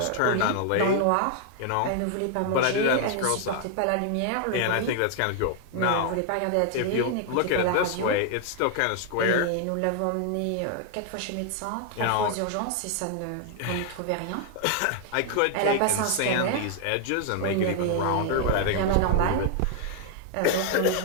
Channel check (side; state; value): both; different; correlation 0.00